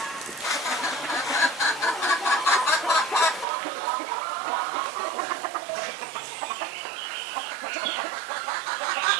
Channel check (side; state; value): left; drops out; at 3.5 s